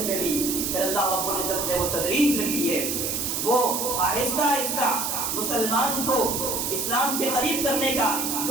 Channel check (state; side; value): noise; right; hiss, 1 dB below the sound